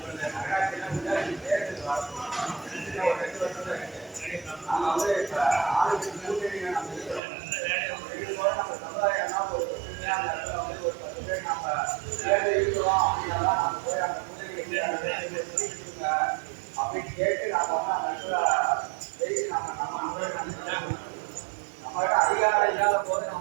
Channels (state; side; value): drops out; left; at 7.2 s